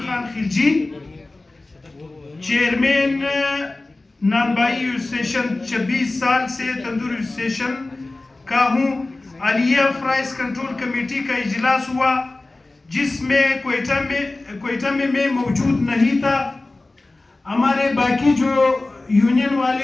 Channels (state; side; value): quieter; right; 3.1 dB